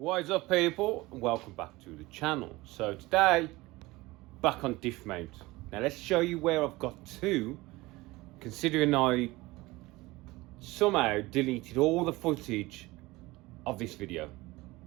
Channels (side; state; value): left; quieter; 20.6 dB